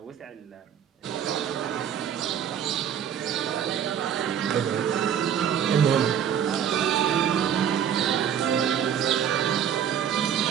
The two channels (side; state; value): left; quieter; 8.8 dB